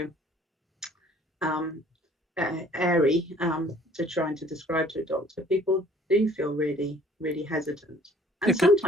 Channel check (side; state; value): both; normal; correlation 0.55